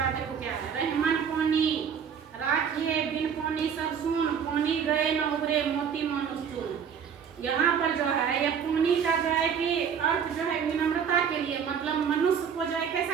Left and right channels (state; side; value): quieter; left; 7.4 dB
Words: देखो क्या है? रहीमन पानी राखिए बिन पानी सब सुन, पानी गए न उबरे मोती मानुष चुन। यहाँ पर जो है यह पानी का जो है कि अर्थ जो है विनम्रता के लिए, मतलब मनुष्य को जो है